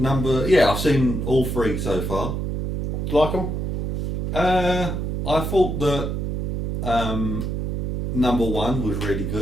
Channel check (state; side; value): noise; right; hum, 1 dB below the sound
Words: I've seen all 3 so far. Do you like them? I thought that number 1 was really